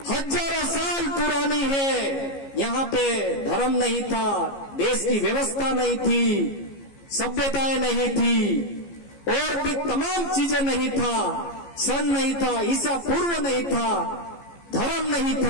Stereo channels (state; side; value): late; right; 15 ms